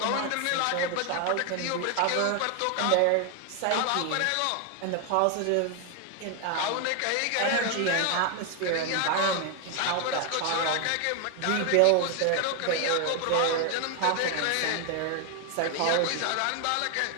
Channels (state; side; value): different; both; correlation 0.01